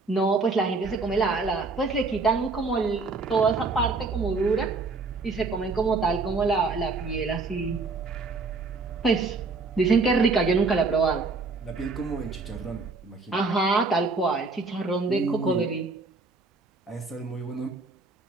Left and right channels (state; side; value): quieter; left; 3.9 dB